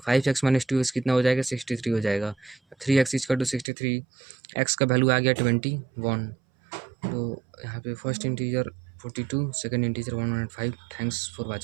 5x - 2x कितना हो जाएगा, 63 हो जाएगा। 3x = 63, x का वैल्यू आ गया 21। तो यहाँ पे first integer 42, second integer 105। Thanks for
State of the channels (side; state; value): left; drops out; at 3.7 s